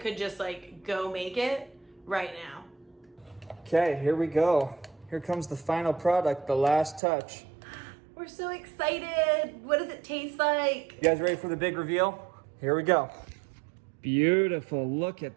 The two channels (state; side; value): drops out; left; at 7.0 s